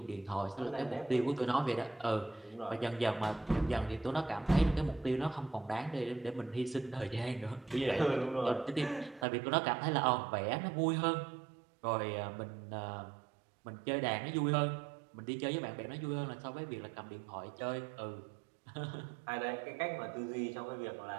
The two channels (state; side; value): drops out; left; at 9.2 s